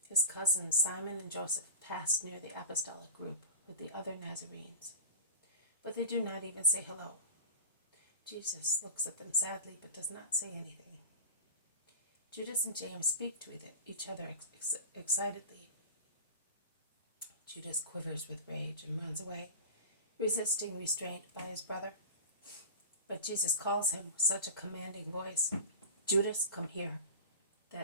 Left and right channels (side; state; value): both; inverted; correlation -0.32